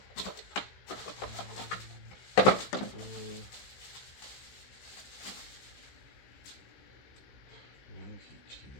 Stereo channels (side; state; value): right; late; 15 ms